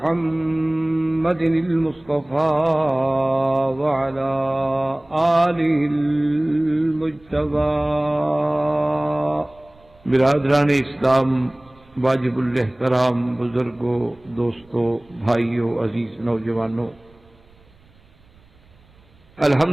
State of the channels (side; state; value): right; noise; rumble, 29 dB below the sound